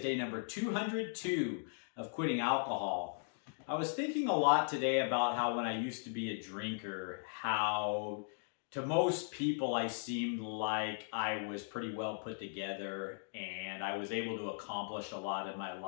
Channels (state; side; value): silent; right; digital silence